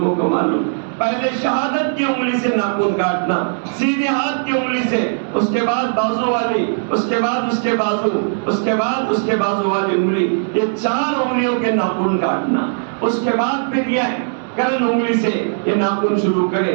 کو معلوم. پہلے شہادت کی انگلی سے ناخن کاٹنا, سیدھے ہاتھ کی انگلی سے, اس کے بعد بازو والی, اس کے بعد اس کے بازو, اس کے بعد اس کے بازو والی انگلی, یہ 4 انگلیوں کے ناخن کاٹنا. اس کے بعد پھر یہ کرن انگلی سے یہ ناخن شروع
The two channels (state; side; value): silent; left; digital silence